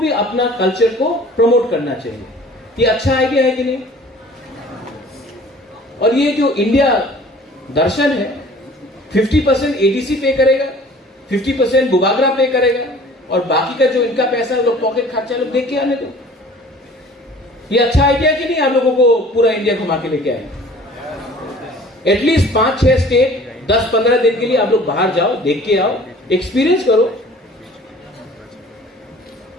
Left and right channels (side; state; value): both; normal; correlation 0.48